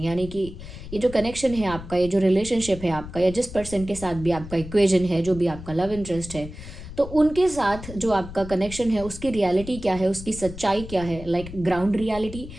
कि ये जो कनेक्शन है आपका, ये जो रिलेशनशिप है आपका, या जिस पर्सन के साथ भी आपका इक्वेजन है, जो भी आपका लव इंटरेस्ट है, तो उनके साथ जो आपका कनेक्शन है उसकी रियलिटी क्या है, उसकी सच्चाई क्या है, लाइक ग्राउंड रियलिटी,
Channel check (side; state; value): left; noise; rumble, 13 dB below the sound